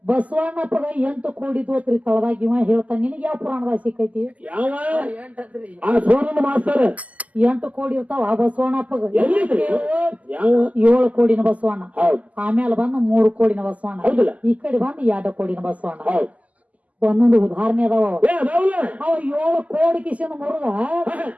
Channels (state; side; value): late; left; 0.073 ms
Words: ಬಸವಣ್ಣಪ್ಪಗ 8 ಕೋಡಿ ತೋತ್ರಿ ತಳದಾಗ ಇವ ಹೇಳ್ತಾನ. ನಿನಗೆ ಯಾವ ಪುರಾಣದಾಗ ಸಿಕ್ಕೈತಿ? 8 ಕೋಡಿ ಇರ್ತಾವ ಬಸವಣ್ಣಪ್ಪಗ. 7 ಕೋಡಿನ ಬಸವಣ್ಣ, ಆಮೇಲೆ ಬಂದ 3 ಕೋಡಿನ ಬಸವಣ್ಣ, ಈ ಕಡೆ ಬಂದ 2 ಕೋಡಿನ ಬಸವಣ್ಣ. ಒಂದೊಂದು ಉದಾಹರಣೆ ಅದಾವ. ಅವ 7 ಕೋಡಿ ಕಿಶನ್ ಮುರುದ